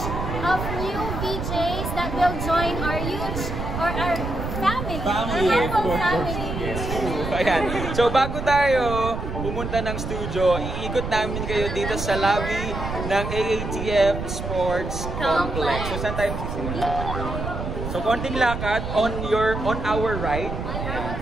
of new VJs that will join our youth or our family. Family, of course. Family. Yes. Ayan. So bago tayo pumunta ng studio, iikot namin kayo dito sa lobby ng AATF Sports Complex. So saan tayo sisimula? So konting lakad on our right. Ayan.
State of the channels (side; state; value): right; noise; rumble, 5 dB below the sound